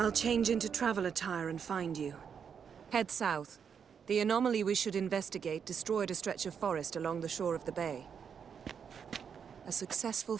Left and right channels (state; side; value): quieter; left; 7.1 dB